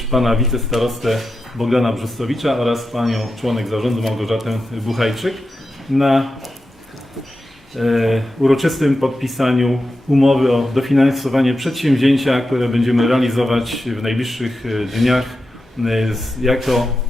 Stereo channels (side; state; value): both; normal; correlation 0.90